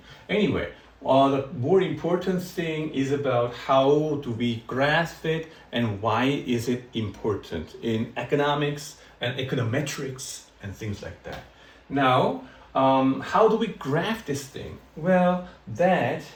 Anyway, the more important thing is about how do we graph it and why is it important in economics and econometrics and things like that. Now, how do we graph this thing? Well, that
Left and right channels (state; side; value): identical; both; correlation 1.00